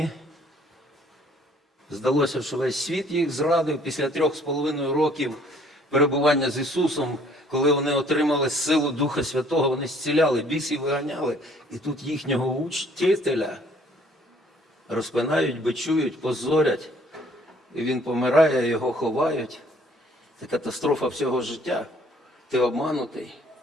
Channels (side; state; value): both; normal; correlation 0.59